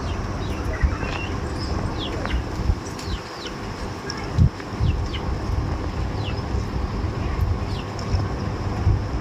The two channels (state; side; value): identical; both; correlation 1.00